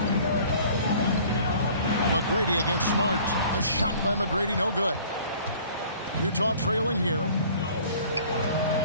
McGrady against Smart. The shot by McGrady, no good. Utah trailing here.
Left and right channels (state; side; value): inverted; both; correlation -0.50